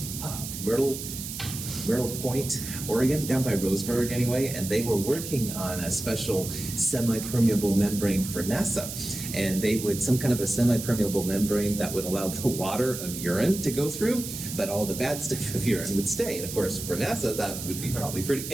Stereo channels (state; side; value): noise; right; hiss, 8 dB below the sound